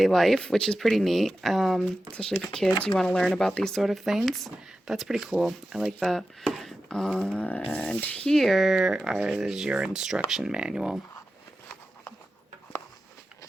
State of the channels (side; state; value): both; normal; correlation 0.93